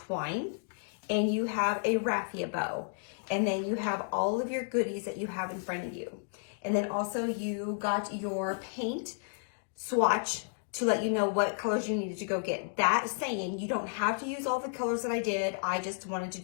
and you have a raffia bow, and then you have all of your goodies that you have in front of you. And then also you got your paint swatch to let you know what colors you needed to go get. That saying, you don't have to use all the colors that I did. I just wanted to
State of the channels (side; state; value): right; silent; digital silence